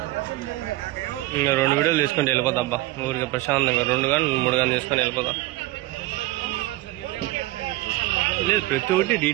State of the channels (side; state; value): left; quieter; 18.5 dB